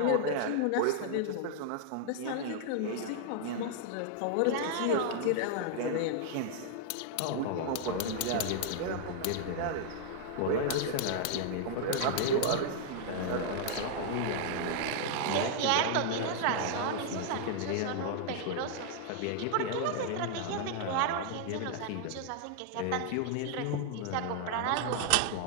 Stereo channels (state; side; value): different; both; correlation 0.00